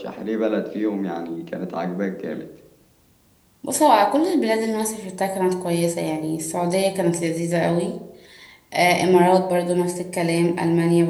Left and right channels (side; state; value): both; identical; correlation 1.00